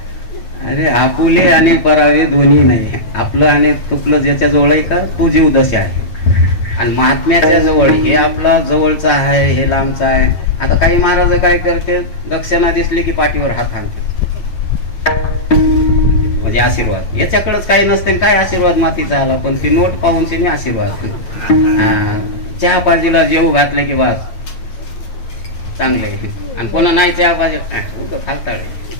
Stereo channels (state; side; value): late; right; 9.1 ms